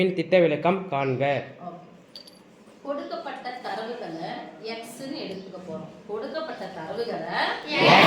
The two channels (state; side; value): identical; both; correlation 1.00